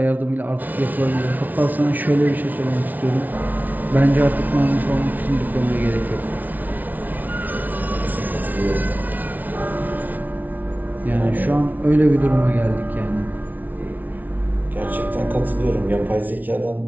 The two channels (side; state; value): left; late; 0.079 ms